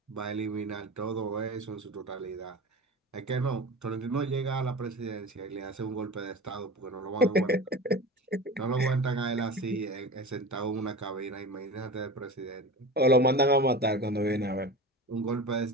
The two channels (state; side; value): normal; both; correlation 0.32